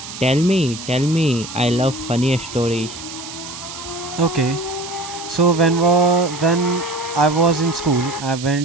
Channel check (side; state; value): right; noise; hiss, 12 dB below the sound